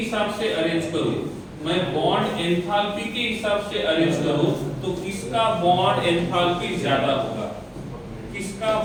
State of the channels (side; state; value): both; identical; correlation 1.00